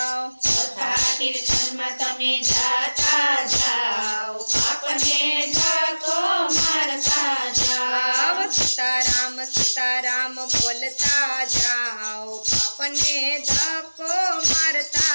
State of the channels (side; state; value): both; inverted; correlation -1.00